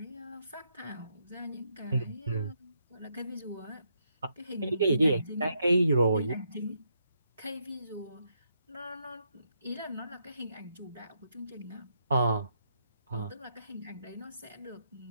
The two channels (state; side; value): inverted; both; correlation -0.78